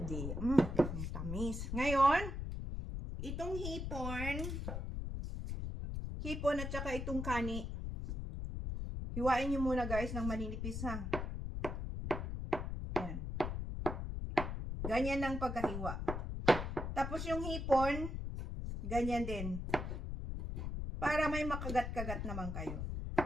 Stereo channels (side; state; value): left; noise; rumble, 4 dB below the sound